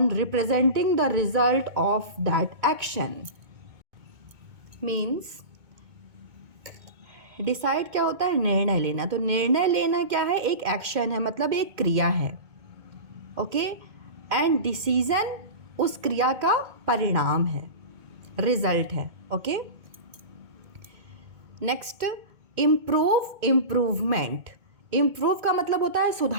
representing the result of that action. Means decide क्या होता है, निर्णय लेना। तो निर्णय लेना क्या है, एक एक्शन है, मतलब एक क्रिया है। ओके, एंड डिसीजन उस क्रिया का परिणाम है, रिजल्ट है। Okay, next improve, improvement. Improve का मतलब होता है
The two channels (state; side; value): late; left; 2.2 ms